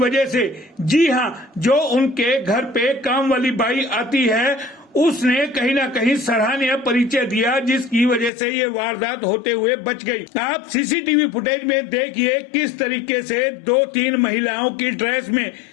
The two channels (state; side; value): drops out; right; at 8.3 s